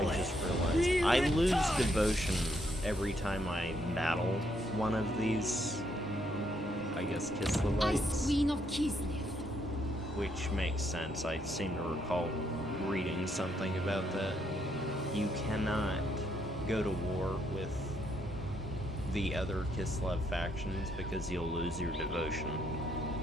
just realized. I lose devotion every time I battle one of these, I guess, Ice Kislevites. Queen of Kislev. Which makes sense. I seem to recall reading something about that. You cannot go to war with the other Kislev factions because you'll lose your devotion,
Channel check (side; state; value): both; normal; correlation 0.74